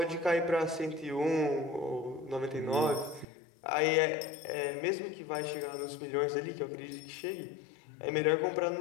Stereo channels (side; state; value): right; drops out; at 3.2 s